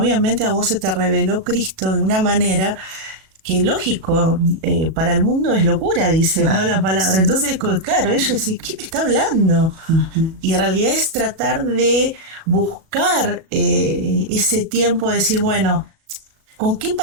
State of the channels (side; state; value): left; late; 37 ms